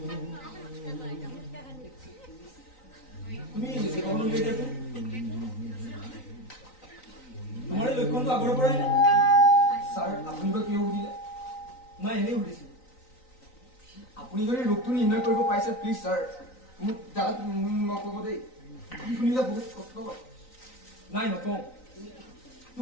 তুমি যেভাবে লিখে যাবে তোমাৰ লক্ষণ তো আগৰ পৰাই স্যাৰ আপনি বা কিয় সুধিলে মই এনেই সুধিছো আপুনি যদি ৰোগটো নিৰ্ণয় কৰিব পাৰিছে প্লিজ স্যাৰ মোক দাদা নকব দেই কি শুনিলে বহুত কষ্ট নাই নকওঁ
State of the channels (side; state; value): right; late; 3.9 ms